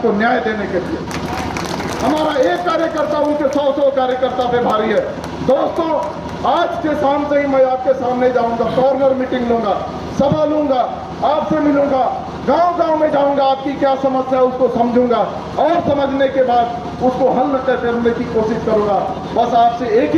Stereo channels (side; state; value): both; identical; correlation 1.00